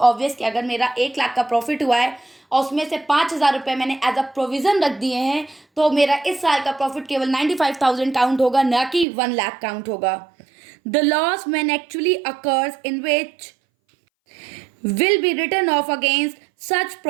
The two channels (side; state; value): left; drops out; at 9.1 s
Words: कि अगर मेरा 1,00,000 का प्रॉफिट हुआ है और उसमें से 5,000 रुपये मैंने एज अ प्रोविज़न रख दिए हैं, तो मेरा इस साल का प्रॉफिट केवल 95,000 काउंट होगा, ना कि 1,00,000 काउंट होगा। The loss when actually occurs in which will be written off against such